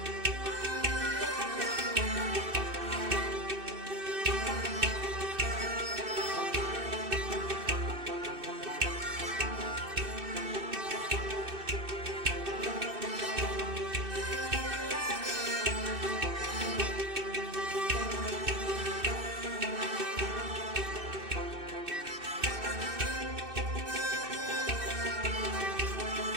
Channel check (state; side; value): late; left; 2.6 ms